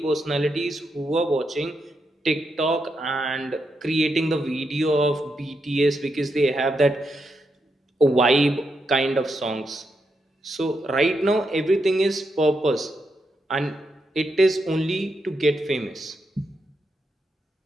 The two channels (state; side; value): normal; both; correlation 0.83